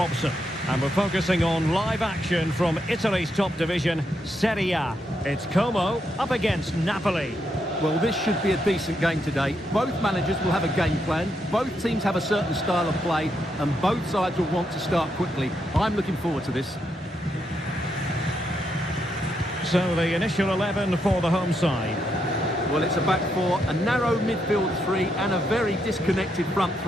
And we're focusing on live action from Italy's top division, Serie A. It's Como up against Napoli. Well, this should be a decent game today. Both managers will have a game plan, both teams have a certain style of play, and both sides will want to start quickly. I'm looking forward to this. So the initial 11 for the home side. Well, it's a back four, a narrow midfield three, and a very disconnected front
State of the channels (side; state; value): both; normal; correlation 0.80